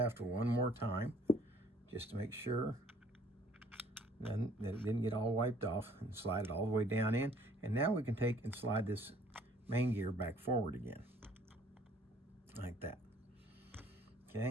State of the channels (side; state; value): both; normal; correlation 0.58